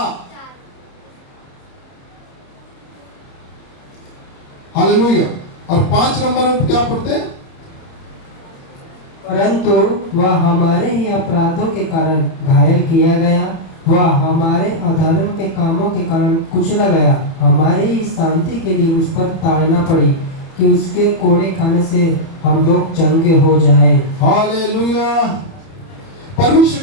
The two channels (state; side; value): late; right; 30 ms